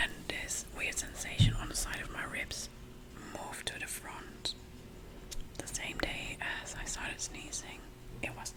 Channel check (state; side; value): identical; both; correlation 1.00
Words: this weird sensation on the side of my ribs moved to the front. The same day as I started sneezing, it was